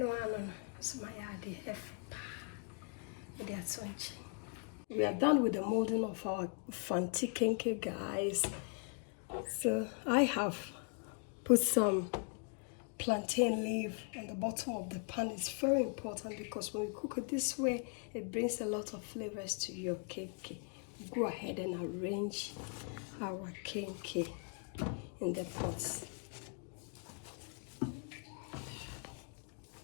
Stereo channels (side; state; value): right; quieter; 38.8 dB